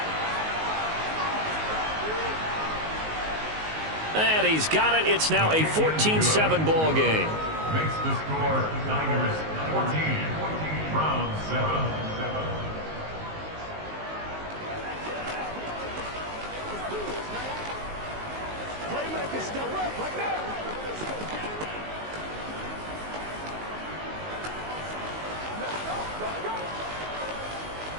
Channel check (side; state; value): left; late; 19 ms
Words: And he's got it. It's now a 14-7 ball game. Makes the score Niners 14, Browns 7. Playmaker, step up like that.